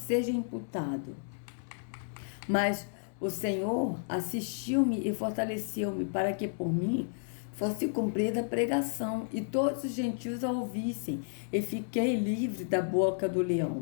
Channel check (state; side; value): silent; right; digital silence